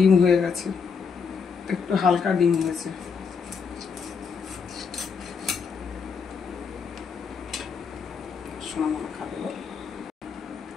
হয়ে গেছে, একটু হালকা ডিম হয়েছে। সোনামালা খাবে বল।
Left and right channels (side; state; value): right; quieter; 5.8 dB